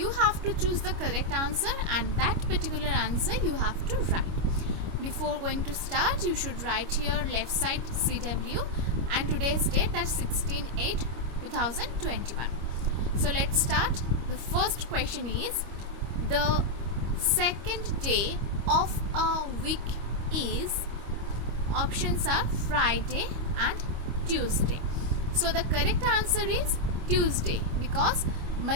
have to choose the correct answer and that particular answer you have to write. Before going to start, you should write here left side CW and today's date, that's 16/8/2021. So let's start. The first question is, the second day of a week is, options are Friday and Tuesday. So the correct answer is Tuesday, because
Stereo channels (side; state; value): left; late; 25 ms